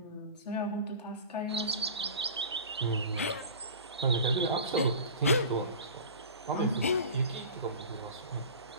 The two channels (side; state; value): both; inverted; correlation -0.35